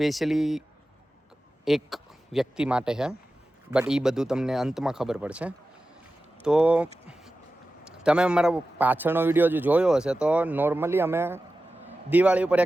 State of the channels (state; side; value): normal; both; correlation 0.94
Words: એક વ્યક્તિ માટે છે, બટ એ બધું તમને અંતમાં ખબર પડશે। તો તમે અમારા પાછળનો વિડીયો જો જોયો હશે તો નોર્મલી અમે દિવાળી ઉપર